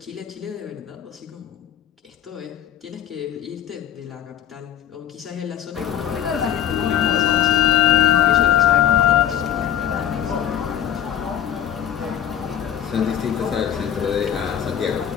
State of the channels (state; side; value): quieter; right; 10.4 dB